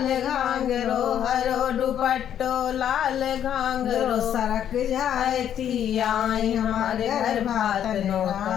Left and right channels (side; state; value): right; quieter; 9.9 dB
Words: घांगरो, हरो दुपट्टो लाल घांगरो, सरक जाती आए हमारे घर भातन